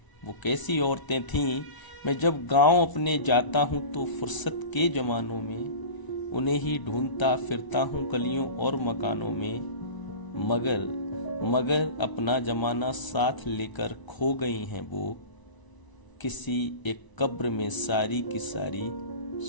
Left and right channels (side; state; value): right; late; 1.0 ms